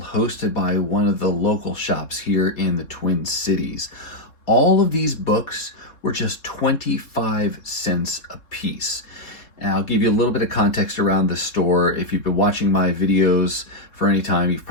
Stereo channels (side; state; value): right; late; 3.7 ms